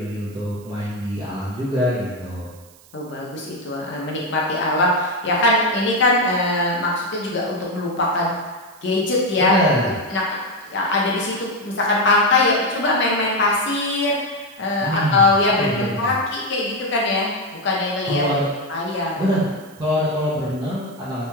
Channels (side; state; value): right; noise; hiss, 26 dB below the sound